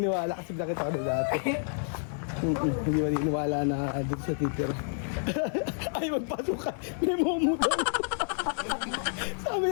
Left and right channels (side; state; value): right; silent; digital silence